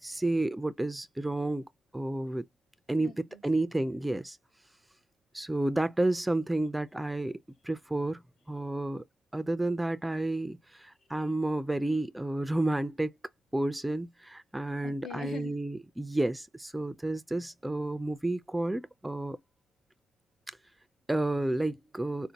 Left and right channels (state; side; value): normal; both; correlation 0.97